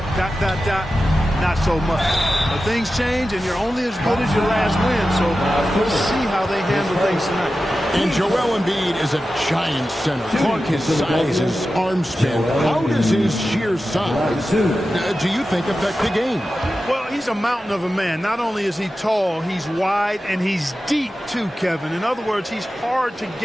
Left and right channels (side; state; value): both; normal; correlation 0.93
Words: ... not so much. But things change, and you're only as good as your last win. So we'll see how they handle things tonight. And Joel Embiid is a giant center. Clark, his size, his arm span. How does his sheer size, do you think, affect the game? Well, he's a mountain of a man. Not only is he tall, he's wide, and he's deep too, Kevin. In other words, he's hard to